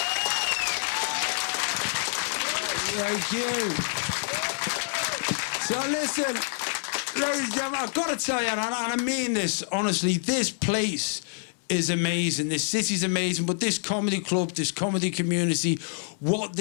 Thank you. So listen, ladies and gentlemen, I've got to tell you, and I mean this, honestly, this place is amazing. This city's amazing, but this comedy club, this comedy community, what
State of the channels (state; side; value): silent; right; digital silence